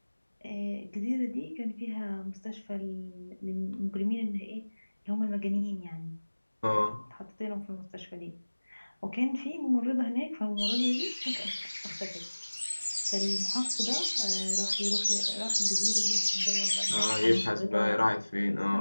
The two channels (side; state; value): both; inverted; correlation -1.00